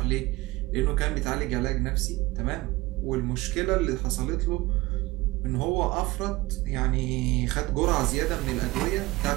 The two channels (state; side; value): quieter; left; 19.6 dB